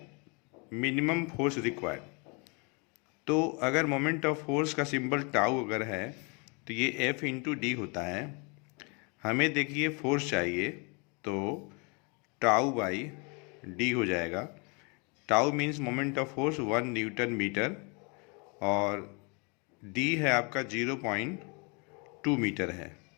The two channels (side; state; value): right; quieter; 32.2 dB